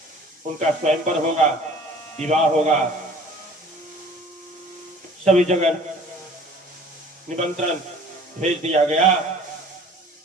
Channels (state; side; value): normal; both; correlation 0.49